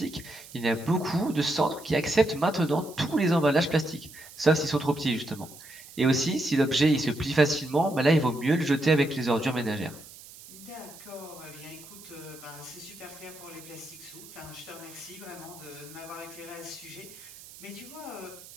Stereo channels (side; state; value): right; noise; hiss, 18 dB below the sound